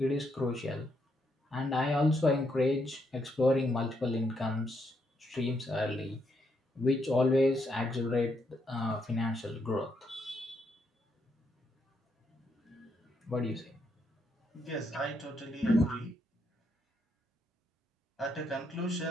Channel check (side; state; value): both; normal; correlation 0.77